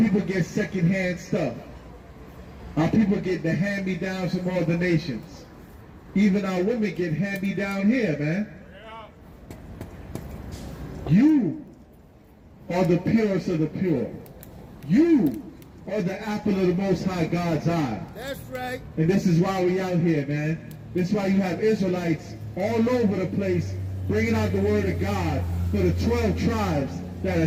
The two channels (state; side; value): identical; both; correlation 1.00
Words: get secondhand stuff. Our people get the hand-me-downs from all the nations. Even our women get hand-me-down here, man. You are the purest of the pure. You are the apple of the Most High God's eye. That's right. And this is why we out here, man. This is why you have Israelites all over the place bringing out the word of God for the 12 tribes that